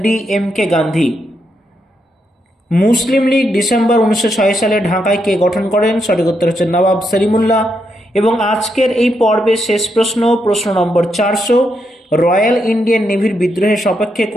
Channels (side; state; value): both; normal; correlation 0.81